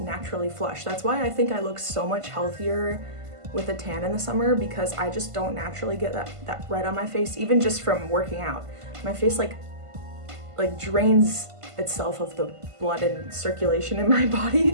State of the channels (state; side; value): late; left; 1.5 ms